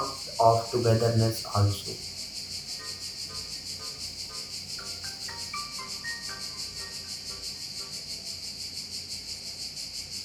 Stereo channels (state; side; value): identical; both; correlation 1.00